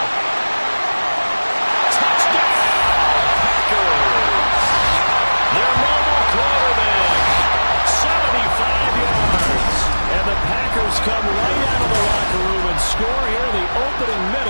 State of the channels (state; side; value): inverted; both; correlation -1.00